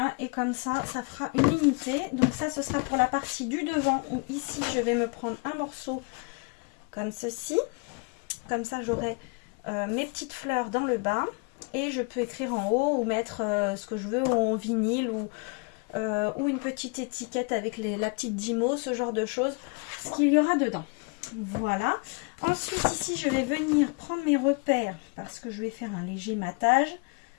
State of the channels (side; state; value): right; quieter; 32.5 dB